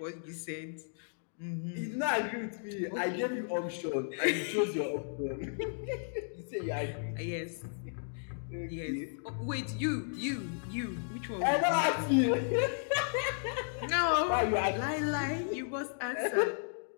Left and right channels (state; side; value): silent; right; digital silence